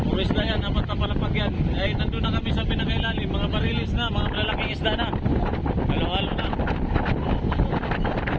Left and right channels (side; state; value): both; identical; correlation 1.00